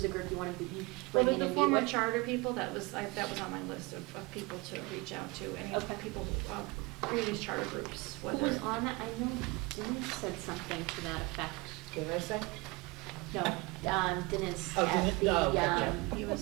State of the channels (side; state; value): left; quieter; 25.0 dB